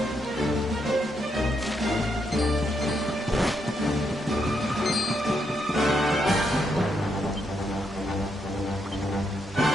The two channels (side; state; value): both; normal; correlation 0.79